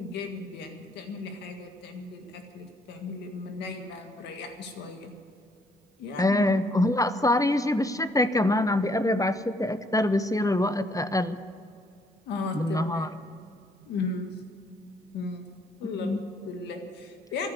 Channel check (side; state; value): both; normal; correlation 0.67